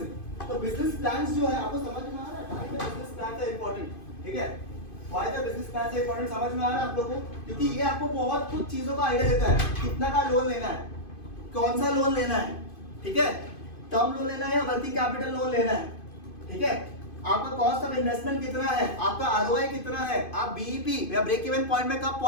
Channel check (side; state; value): right; late; 2.5 ms